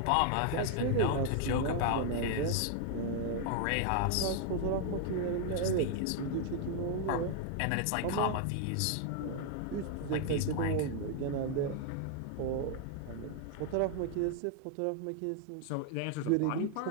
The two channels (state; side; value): different; both; correlation 0.00